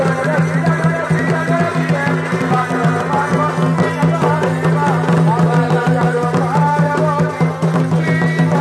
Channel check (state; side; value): identical; both; correlation 1.00